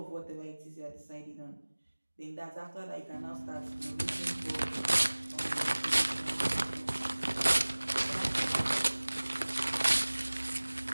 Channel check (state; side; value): inverted; both; correlation -1.00